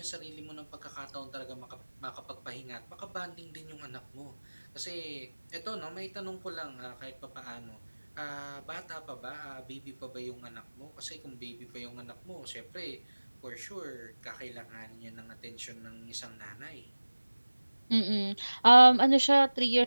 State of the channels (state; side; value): inverted; both; correlation -1.00